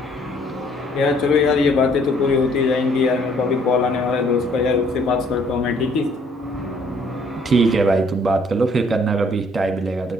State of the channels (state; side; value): normal; both; correlation 0.62